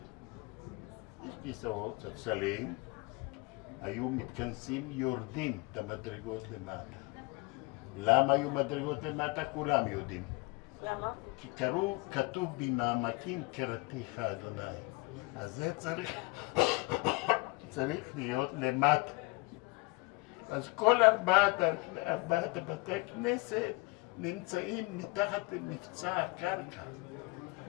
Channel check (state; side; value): quieter; right; 25.6 dB